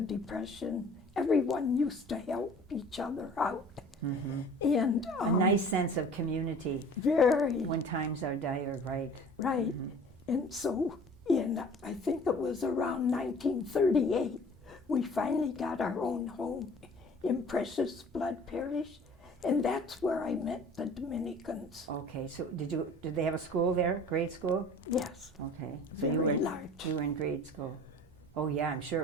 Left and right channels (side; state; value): both; normal; correlation 0.47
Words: Depression, everyone used to help each other out. Mm-hmm. And A nice sense of community very when times are dire, right? right. And so I think it was around 1938, we finally got our own home in Precious Blood Parish, and that's where I met the Dominicans. Okay, so did they have a school there, grade school? Yes, Okay. So very large. You were in grade school. Oh yeah, I'm sure